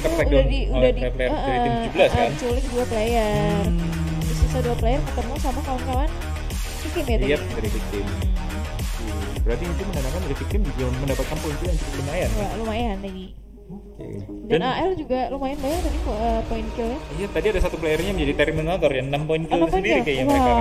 tuh tertag udah oleh di player dari tim 17 kan. culik 2 player. Terus sisa 2 player ketemu sama kawan-kawan victim ya tadi. Iya, dari victim. Berarti itu menandakan dari victim juga mendapatkan poin yang cukup lumayan. Wah, lumayan tadi. Oke. Dan AL juga lumayan banyak tadi poin killnya. Iya, tadi ada 1 playernya menjadi Terminator ya, 6 poin kill 6 poin sendiri kill? kayaknya mereka Wow.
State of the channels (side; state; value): both; identical; correlation 1.00